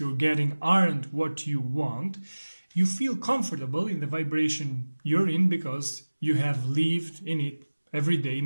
getting aren't what you want, you feel comfortable in the vibration you're in because you have lived in it every day,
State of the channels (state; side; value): inverted; both; correlation -1.00